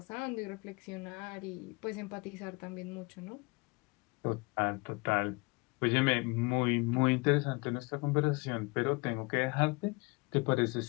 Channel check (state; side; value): quieter; right; 27.4 dB